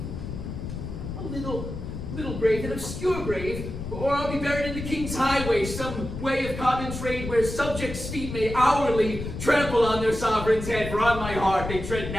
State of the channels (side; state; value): left; noise; rumble, 7 dB below the sound